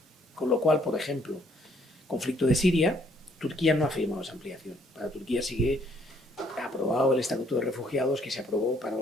Con lo cual, por ejemplo, conflicto de Siria, Turquía no ha firmado esa ampliación. Para Turquía sigue aprobado el Estatuto de Refugiados que se aprobó para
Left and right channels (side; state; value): both; normal; correlation 0.66